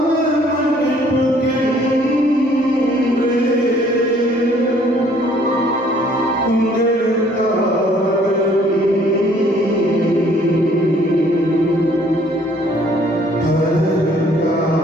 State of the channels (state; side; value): normal; both; correlation 0.60